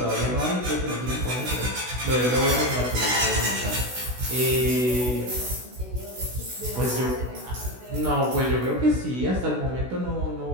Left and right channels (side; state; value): left; late; 16 ms